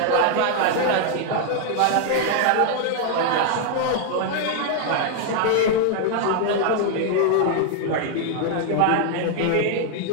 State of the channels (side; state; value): both; different; correlation 0.00